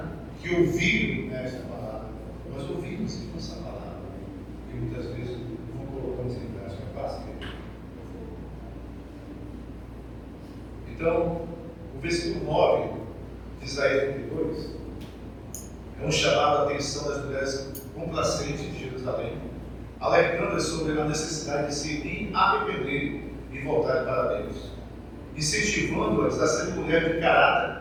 que ouviram essa palavra. Nós ouvimos essa palavra. E muitas vezes não colocamos em prática. Então, o versículo 9 de Isaías 32 é um chamado à atenção das mulheres complacentes de Jerusalém, alertando sobre a necessidade de se arrepender e voltar para Deus, incentivando-as a ser mulheres de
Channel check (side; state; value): both; identical; correlation 1.00